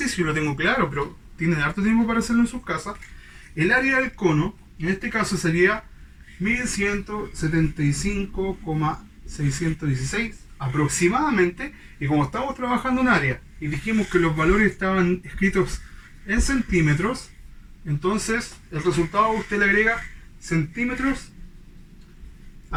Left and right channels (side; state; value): both; identical; correlation 1.00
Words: lo tengo claro, pero tienen harto tiempo para hacerlo en sus casas. El área del cono, en este caso, sería 1175,616 aproximadamente. Y como estamos trabajando en área y dijimos que los valores estaban escritos en centímetros, entonces el resultado usted le agrega centímetros